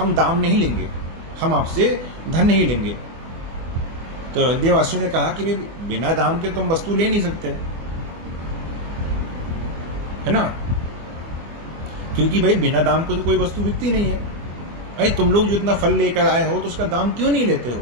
दाम नहीं लेंगे, हम आपसे धन नहीं लेंगे। तो अयोध्यावासियों ने कहा कि बिना दाम के तुम वस्तु ले नहीं सकते, है ना? क्योंकि भाई बिना दाम को तो कोई वस्तु बिकती नहीं है। अरे तुम लोग जो इतना फल लेकर आए हो तो उसका दाम क्यों नहीं लेते हो?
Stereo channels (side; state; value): left; late; 24 ms